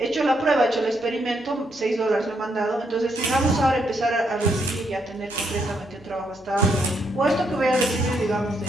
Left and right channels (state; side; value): noise; left; hum, 27 dB below the sound